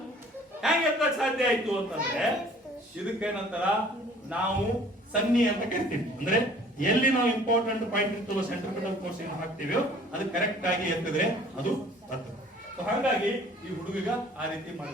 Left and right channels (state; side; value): normal; both; correlation 0.52